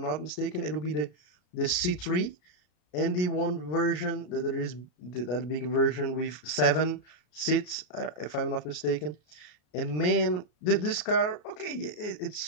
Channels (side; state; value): right; late; 33 ms